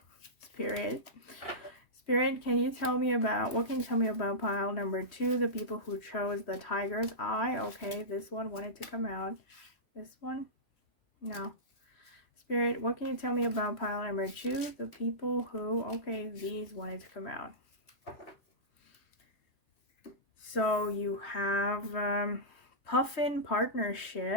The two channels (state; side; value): late; right; 3.1 ms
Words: Spirit. Spirit, can you tell me about, what can you tell me about pile number 2, the people who chose the tiger's eye? Okay, this one wanted to come out. This one? No. Spirit, what can you tell me about pile number 2, the people who, okay, these wanted to come out. So you have Puffin